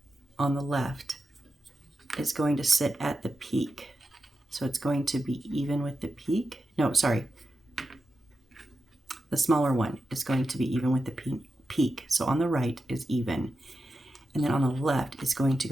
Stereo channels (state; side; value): normal; both; correlation 0.90